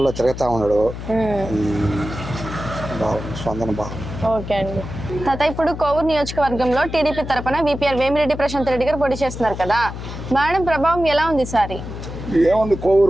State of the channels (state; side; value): noise; left; hum, 9 dB below the sound